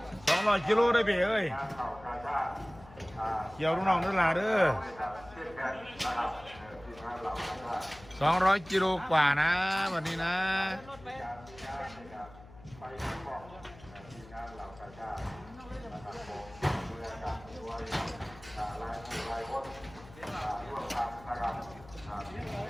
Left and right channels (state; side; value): noise; left; hum, 20 dB below the sound